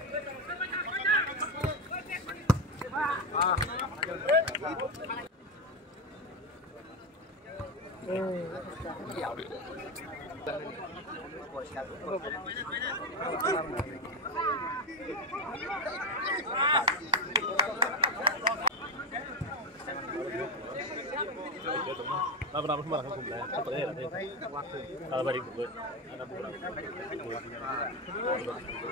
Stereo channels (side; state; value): both; normal; correlation 0.12